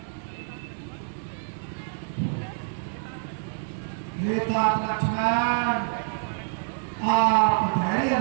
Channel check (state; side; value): silent; left; 60 dB below the other